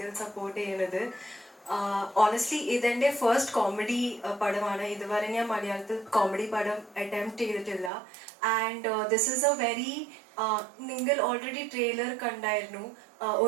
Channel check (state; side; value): drops out; left; at 7.9 s